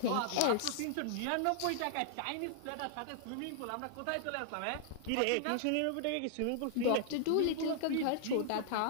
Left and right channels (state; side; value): different; both; correlation -0.01